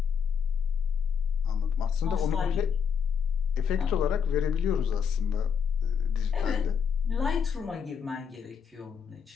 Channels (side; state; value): right; quieter; 7.0 dB